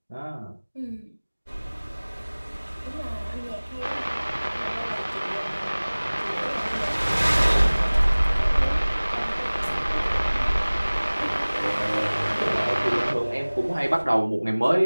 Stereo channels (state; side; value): inverted; both; correlation -1.00